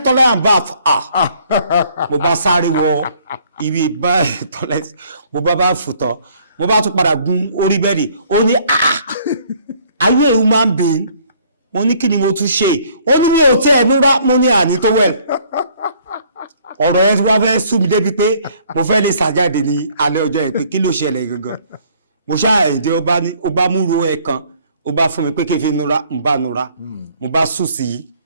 toilet and bath mo bá sáré wọ ibi bá toilet mo bá fùtọ̀ mo bá tún padà gun orí bẹ́ẹ̀dì ó ní are you a human being mo ní kí ni mo tún ṣe ó ní mi ò tẹ́ ẹ̀nú rá mo ní àní tó wẹ̀ ọ̀rọ̀ yẹn tí wọ́n fẹ́ sú mi débi pé mo fẹ́ lè ṣàjáde ní alẹ́ ọjọ́ yẹn pé kí ló ṣẹlẹ̀ gangan mo ṣáà èdè ó bá múru ẹ̀ kan ó bá fún mi pé kí n fi nura n bá nura mo bá sùn sí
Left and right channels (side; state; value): both; inverted; correlation -0.61